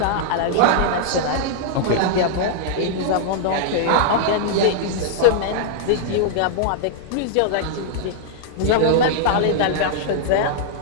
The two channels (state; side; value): different; both; correlation -0.01